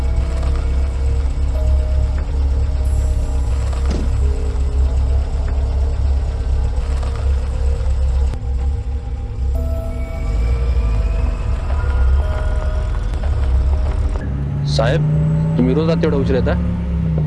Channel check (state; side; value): identical; both; correlation 1.00